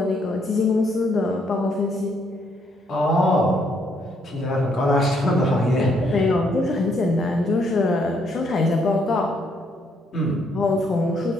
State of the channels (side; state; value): both; normal; correlation 0.71